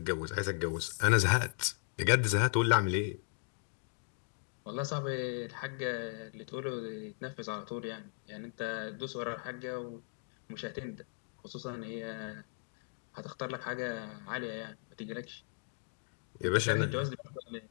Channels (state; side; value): silent; right; digital silence